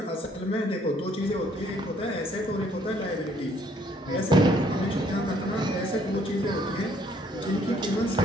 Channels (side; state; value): both; normal; correlation 0.64